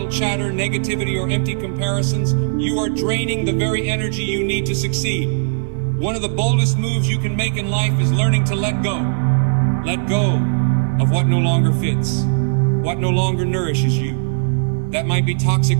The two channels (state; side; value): silent; left; 57 dB below the other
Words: chatter, negativity, or empty comparisons, you are draining the very energy you need to succeed. One of the boldest moves you can make in life is learning to let go. Let go of what no longer fits, what no longer nourishes you. That might be toxic